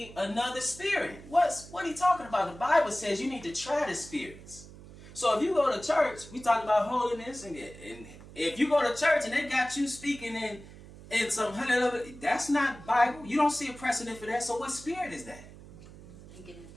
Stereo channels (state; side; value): noise; right; hum, 18 dB below the sound